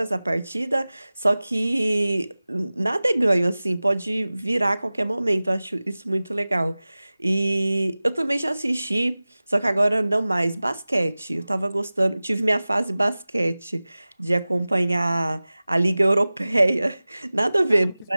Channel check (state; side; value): inverted; both; correlation -0.98